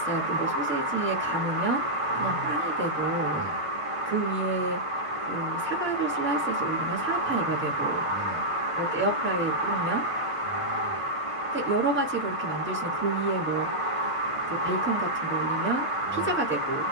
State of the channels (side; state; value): both; normal; correlation -0.08